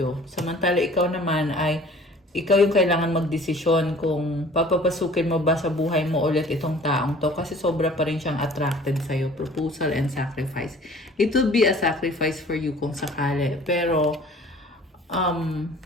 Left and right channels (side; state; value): both; normal; correlation 0.49